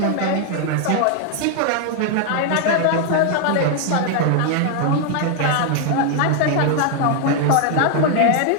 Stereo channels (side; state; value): both; different; correlation 0.00